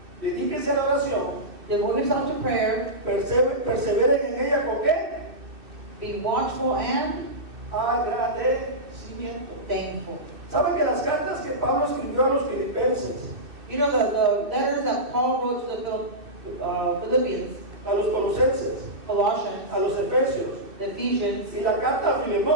Dedíquense a la oración, Devote yourself to prayer, perseveren en ella con qué? be watchful and Agradecimiento. thankful. ¿Saben que las cartas que Pablo escribió a los filipenses, You know the letters that Paul wrote to the Philippians, a los colosenses, Colossians, a los efesios the Ephesians, y la carta a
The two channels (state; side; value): late; left; 2.6 ms